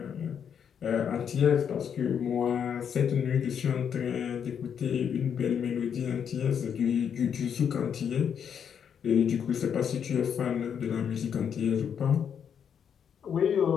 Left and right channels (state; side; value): quieter; right; 7.9 dB